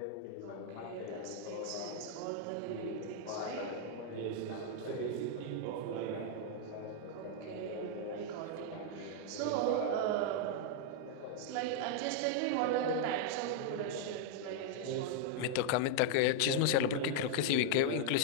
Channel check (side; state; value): both; different; correlation -0.01